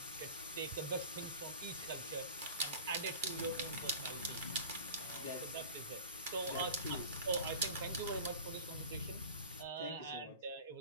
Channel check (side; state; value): both; inverted; correlation -0.38